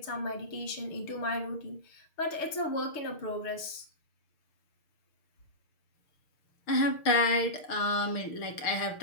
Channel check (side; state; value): right; late; 6.4 ms